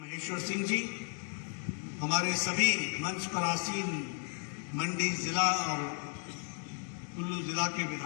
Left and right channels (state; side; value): quieter; right; 39.9 dB